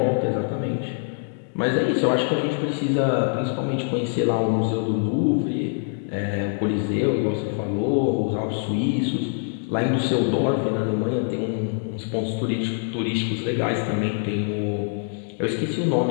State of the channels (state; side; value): silent; right; digital silence